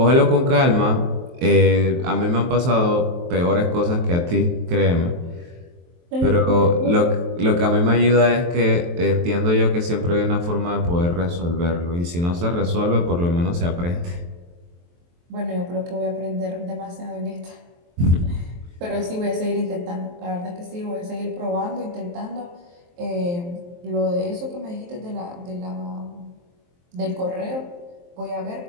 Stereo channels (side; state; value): left; late; 23 ms